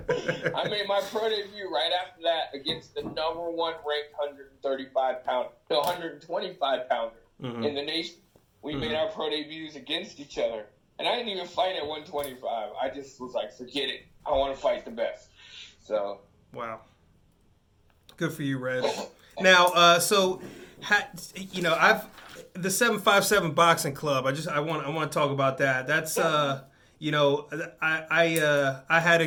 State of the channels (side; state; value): both; identical; correlation 1.00